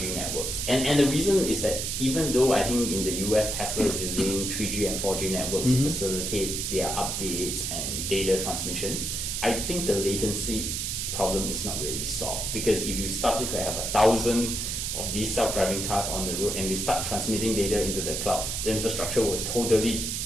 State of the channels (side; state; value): right; noise; hiss, 2 dB below the sound